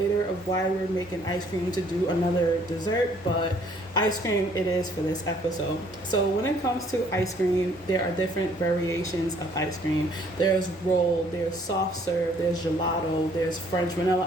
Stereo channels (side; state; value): both; normal; correlation 0.62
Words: of why we're making ice cream to do another dessert, but ice cream it is for this episode. So when it comes to ice cream, there are different variations of ice cream. There's roll, there's soft serve, there's gelato, there's French vanilla